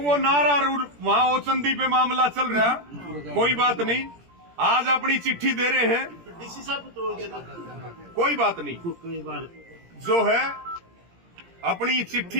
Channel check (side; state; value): left; late; 17 ms